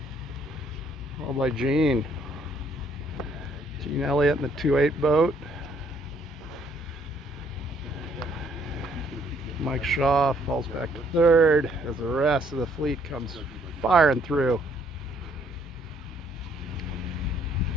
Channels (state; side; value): normal; both; correlation 0.66